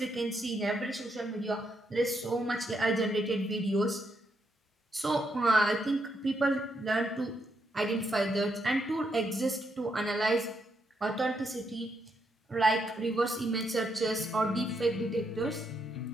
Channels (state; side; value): normal; both; correlation 0.79